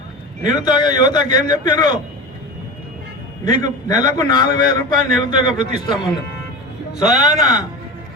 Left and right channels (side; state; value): both; normal; correlation 0.28